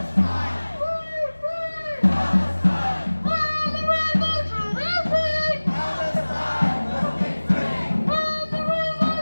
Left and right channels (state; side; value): inverted; both; correlation -1.00